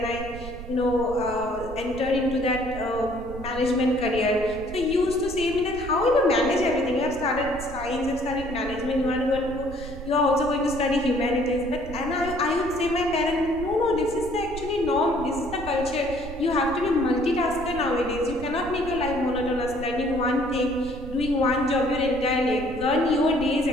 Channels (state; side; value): noise; right; rumble, 11 dB below the sound